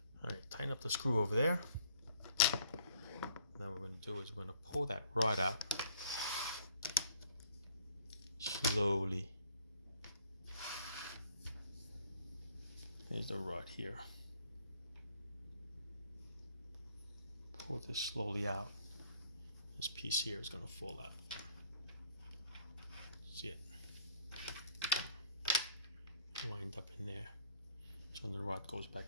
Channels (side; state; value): both; inverted; correlation -0.59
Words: All right, tighten up the screw over there. Now what we're going to do is we're going to pull that rod out slowly. Here's the rod here. Pull this slowly out. This piece here is going to fall out. See it? Wind up in there. So the rod goes